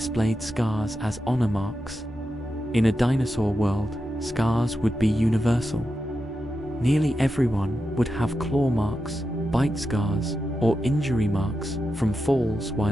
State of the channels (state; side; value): normal; both; correlation 0.89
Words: scars as honor marks. In a dinosaur world, scars would be universal. Nearly everyone would have claw marks, bite scars, or injury marks from falls